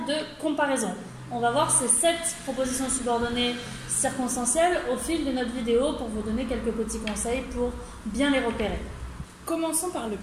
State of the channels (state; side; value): identical; both; correlation 1.00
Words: de comparaison. On va voir ces 7 propositions subordonnées circonstancielles au fil de notre vidéo pour vous donner quelques petits conseils pour bien les repérer. Commençons par le